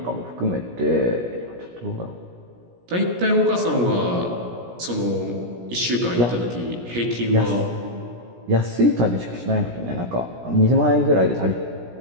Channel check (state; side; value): late; left; 17 ms